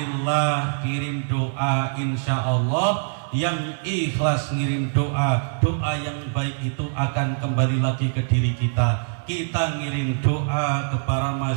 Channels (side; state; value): left; silent; digital silence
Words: kirim doa, insya Allah yang ikhlas ngirim doa, doa yang baik itu akan kembali lagi ke diri kita. Kita ngirim doa ke para